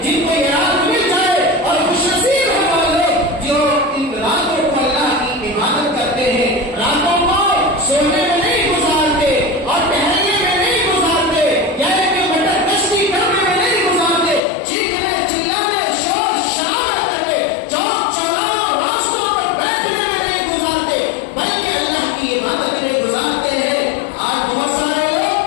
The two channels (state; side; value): drops out; right; at 14.4 s